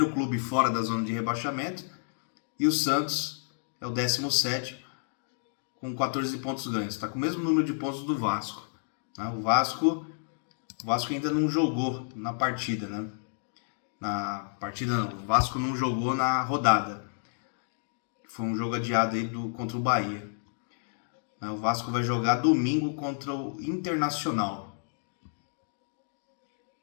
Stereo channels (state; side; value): silent; right; digital silence